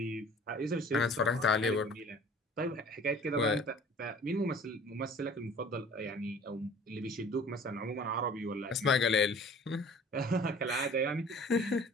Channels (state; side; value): normal; both; correlation 0.47